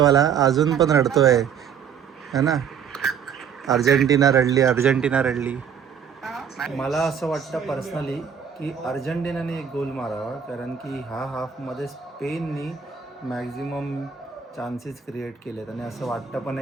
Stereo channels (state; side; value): quieter; left; 7.5 dB